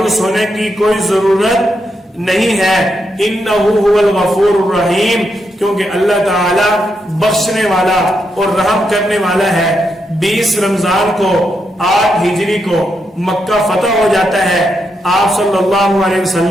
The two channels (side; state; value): both; normal; correlation 0.82